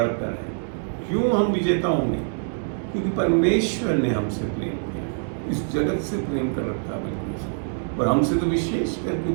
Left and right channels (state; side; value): silent; left; digital silence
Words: है। क्यों हम विजेता होंगे? क्योंकि परमेश्वर ने हमसे प्रेम किया, इस जगत से प्रेम कर रखा है और हमसे तो विशेष कर,